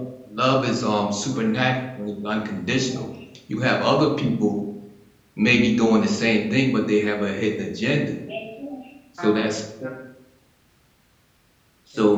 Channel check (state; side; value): identical; both; correlation 1.00